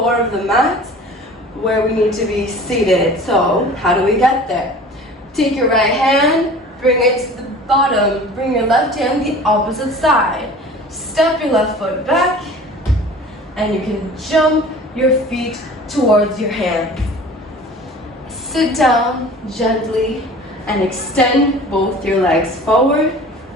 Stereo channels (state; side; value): normal; both; correlation 0.43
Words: of the mat where we need to be seated. So how do we get there? Take your right hand, bring it to the bottom. Bring your left hand the opposite side. Step your left foot back and you can jump your feet towards your hands. Sit down gently and extend both your legs forward